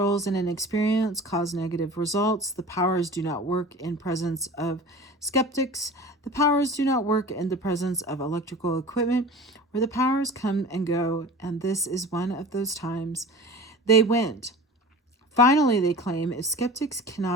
and inexperience cause negative results. The powers do not work in presence of skeptics. The powers do not work in the presence of electrical equipment, where the powers come and go, and this is one of those times. They went. Finally, they claim if skeptics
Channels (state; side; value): normal; both; correlation 0.38